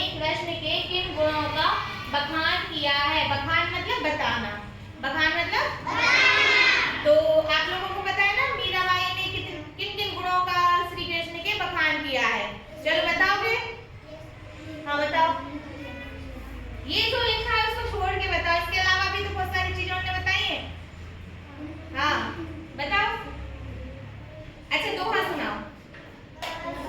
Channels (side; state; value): both; identical; correlation 1.00